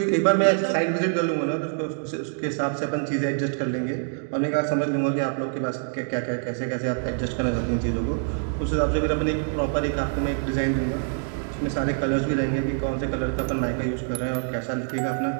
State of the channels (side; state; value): left; silent; 61 dB below the other